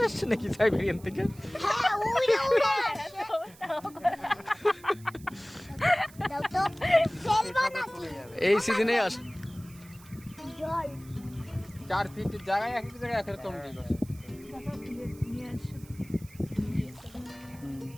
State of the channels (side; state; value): right; noise; hiss, 23 dB below the sound